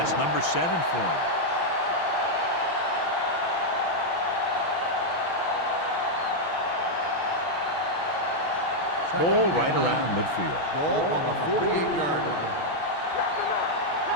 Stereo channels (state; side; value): late; right; 6.0 ms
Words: number 7 for him. Ball right around midfield. Ball on the 48-yard line.